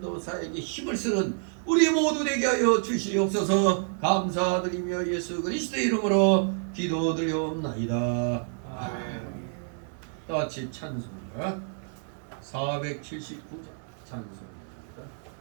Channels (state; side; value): silent; left; 59 dB below the other